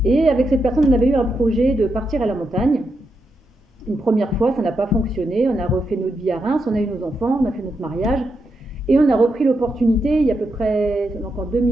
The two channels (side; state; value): both; normal; correlation 0.84